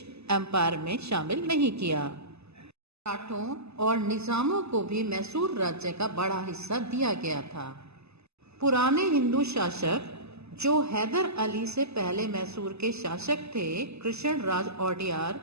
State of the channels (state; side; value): late; left; 0.79 ms